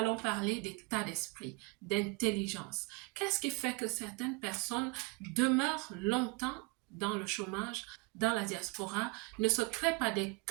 parler d'état d'esprit, d'intelligence. Qu'est-ce qui fait que certaines personnes demeurent longtemps dans le chômage, dans la diaspora, ne se créent pas des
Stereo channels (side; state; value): left; quieter; 27.9 dB